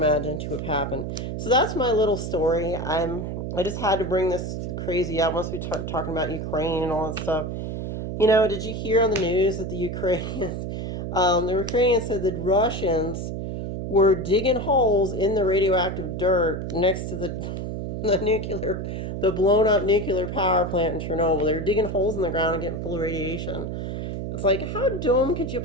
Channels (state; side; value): noise; right; hum, 4 dB below the sound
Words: to have happened. So that's my little story. I just had to bring this crazy up once we start talking about Ukraine and all that stuff. Did you hear on the news that the Ukrainians said that Russians were digging holes in the radioactive dirt next to the blown up nuclear power plant in Chernobyl. They were digging holes in the ground and getting full of radiation. It's like, how dumb could you